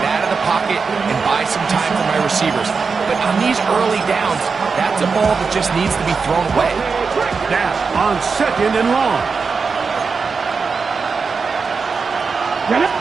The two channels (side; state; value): left; quieter; 5.0 dB